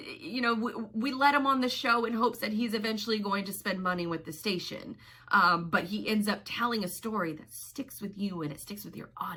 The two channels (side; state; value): both; identical; correlation 1.00